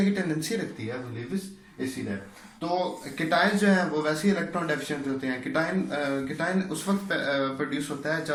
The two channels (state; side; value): identical; both; correlation 1.00